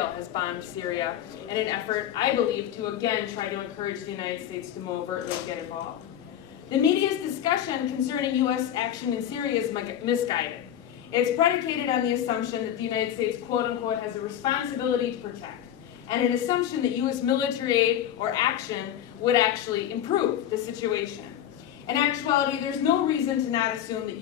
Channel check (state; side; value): quieter; right; 10.6 dB